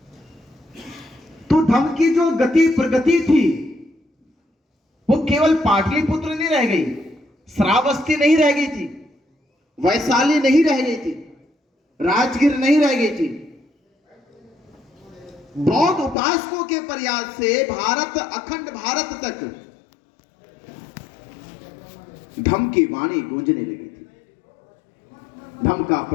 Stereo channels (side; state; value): right; drops out; at 16.2 s